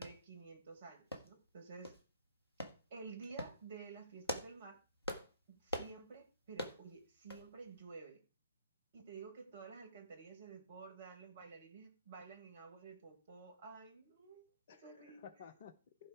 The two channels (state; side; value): inverted; both; correlation -0.63